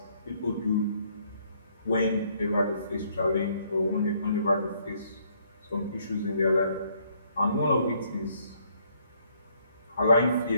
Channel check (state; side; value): inverted; both; correlation -0.67